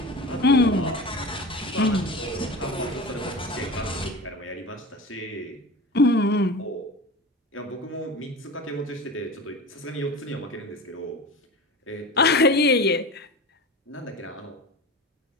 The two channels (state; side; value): normal; both; correlation 0.32